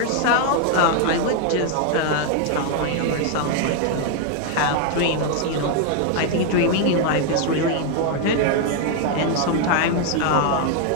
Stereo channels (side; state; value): both; different; correlation 0.00